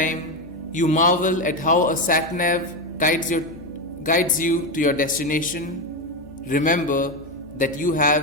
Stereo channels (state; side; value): noise; left; hum, 22 dB below the sound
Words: you marvel at how a sat-nav guides you to your destination, remember that you